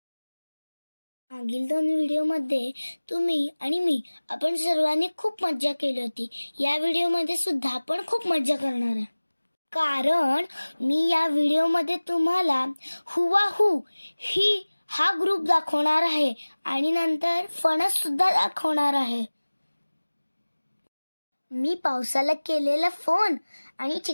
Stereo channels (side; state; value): both; inverted; correlation -1.00